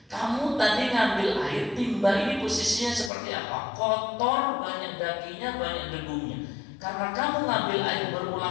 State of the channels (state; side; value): drops out; right; at 3.1 s